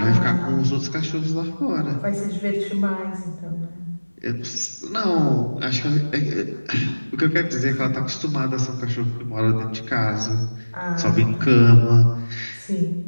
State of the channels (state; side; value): inverted; both; correlation -1.00